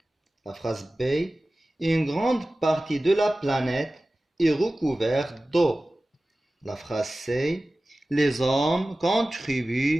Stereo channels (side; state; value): both; normal; correlation 0.97